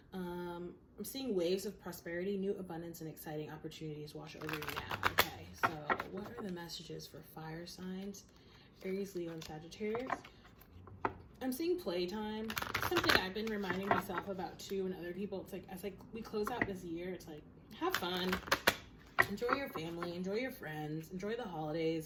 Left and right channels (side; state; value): both; identical; correlation 1.00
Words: I'm seeing waves of prosperity, new abundance, and exciting opportunities wash over you now. Okay, so what are the messages for fire signs? Aries, Leo, and Sagittarius. I'm seeing playtime. Something I've been reminding myself about too, and other people. It's like as like we close out this year, it's like have fun, enjoy your family, enjoy your friends, enjoy the